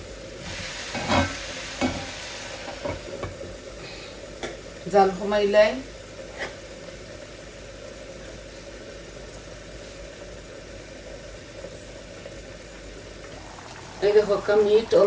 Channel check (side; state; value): both; identical; correlation 1.00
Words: জাল কমাইলাই এই দেখো মিট